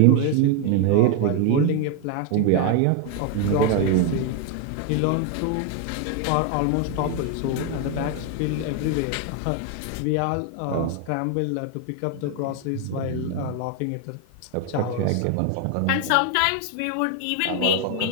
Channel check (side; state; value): both; different; correlation 0.01